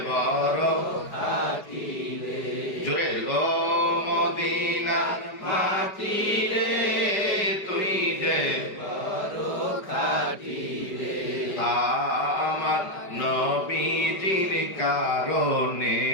বড় খাঁটি রে জোরে ও মদিনার মাটি রে তুই যে বড় খাঁটি রে আমার নবীজির কারণে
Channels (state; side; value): late; right; 4.9 ms